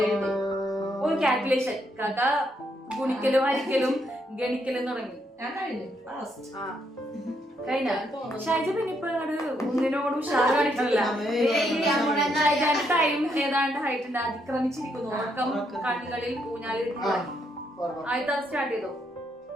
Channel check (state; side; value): normal; both; correlation 0.76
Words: ഒരു കാൽക്കുലേഷൻ കാക്ക ഗുണിക്കലും ഹരിക്കലും ഗണിക്കലും തുടങ്ങി കഴിഞ്ഞ ഷൈജ പിന്നെ ഇപ്പൊ ഒന്നിനോട് ഉഷാറ് കാണിക്കണില്ല. ടൈം ഏതാണ്ട് ഹൈറ്റ് അതിക്രമിച്ചിരിക്കുന്നു. ഉറക്കം കണ്ണുകളിൽ ഊഞ്ഞാലിൽ ആദ്യത്തെ സ്റ്റാർട്ട് ചെയ്തോ.